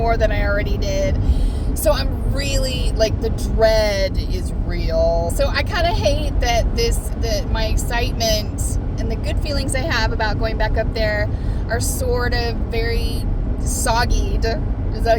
than I already did. So I'm really, the dread is real. So I kind of hate that my excitement and the good feelings I have about going back up there are sort of very soggied, is that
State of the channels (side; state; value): both; identical; correlation 1.00